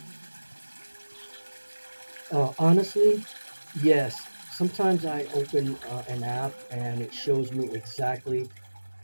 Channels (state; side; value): inverted; both; correlation -1.00